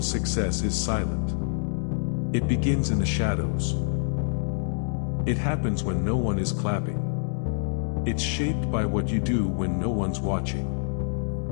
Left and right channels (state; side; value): silent; right; digital silence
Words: success is silent. It begins in the shadows. It happens when no one is clapping. It's shaped by what you do when no one's watching.